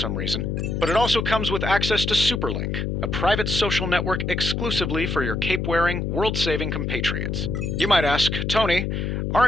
reason. But it also comes with access to Superlink, a private social network exclusively for your cape-wearing, world-saving compatriots. You might ask, Tony,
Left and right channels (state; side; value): noise; left; hum, 1 dB below the sound